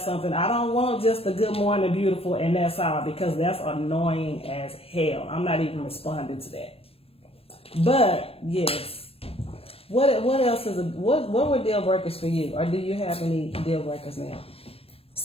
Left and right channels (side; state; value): right; late; 0.28 ms